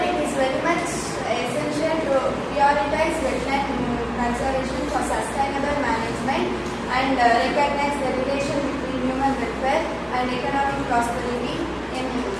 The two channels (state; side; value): identical; both; correlation 1.00